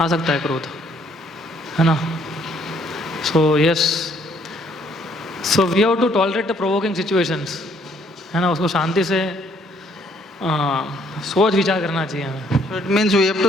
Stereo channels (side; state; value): both; normal; correlation 0.65